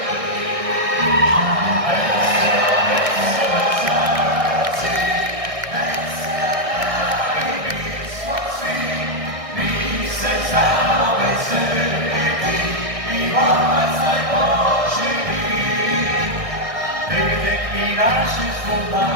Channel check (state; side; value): late; left; 1.6 ms